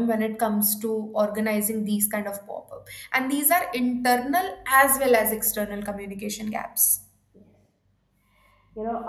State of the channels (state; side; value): identical; both; correlation 1.00